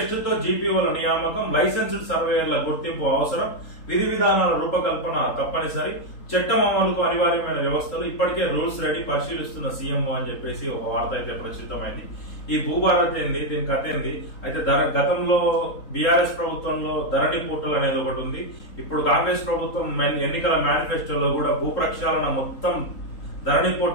తో జీపీఓల నియామకం, లైసెన్స్డ్ సర్వేయర్ల గుర్తింపు అవసరం, విధి విధానాల రూపకల్పన తప్పనిసరి, చట్టం అమలుకు అనివార్యమైన వ్యవస్థలు, ఇప్పటికే రూల్స్ రెడీ, పరిశీలిస్తున్న సీఎంఓ అని చెప్పేసి ఒక వార్త అయితే ప్రచురితమైంది. ఈ భూభారతి ఏంది, దీని కథ ఏంది అయితే గతంలో బీఆర్ఎస్ ప్రభుత్వంలో ధరణి పోర్టల్ అనేది ఒకటి ఉంది. ఇప్పుడు కాంగ్రెస్ ప్రభుత్వం ఎన్నికల మేనిఫెస్టోలో కూడా భూ ప్రక్షాళన మొత్తం ధరణి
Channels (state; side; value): late; right; 3.8 ms